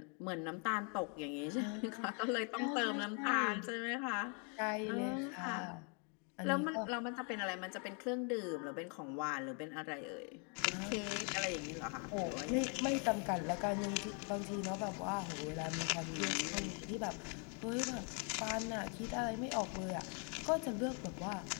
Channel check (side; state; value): right; quieter; 37.8 dB